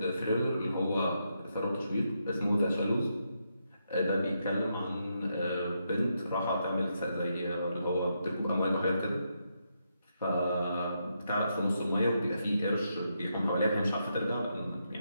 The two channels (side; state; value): both; inverted; correlation -0.81